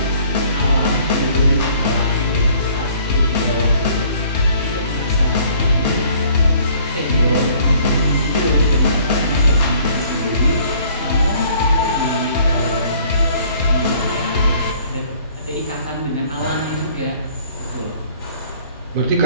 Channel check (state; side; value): inverted; both; correlation -0.58